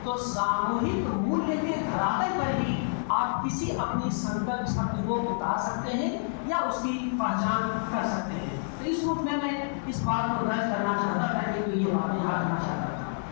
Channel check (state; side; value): silent; right; digital silence